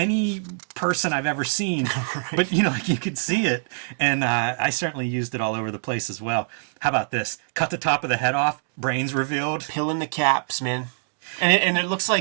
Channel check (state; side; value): silent; left; digital silence